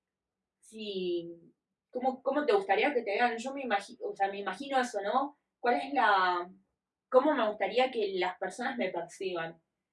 si. ¿Cómo te gustaría que te vean? Yo me imagino, o sea, me imagino eso, ¿no? ¿Cuál es la. ¿Cómo me gustaría que las personas me perciban?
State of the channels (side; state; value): both; identical; correlation 1.00